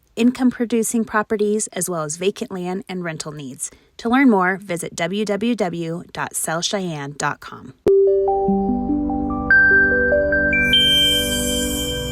income-producing properties, as well as vacant land and rental needs. To learn more, visit www.sellcheyenne.com.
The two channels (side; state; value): both; identical; correlation 1.00